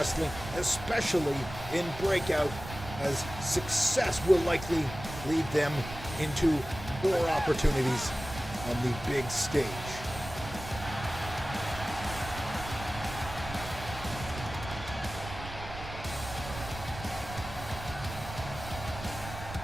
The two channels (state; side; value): noise; right; rumble, 11 dB below the sound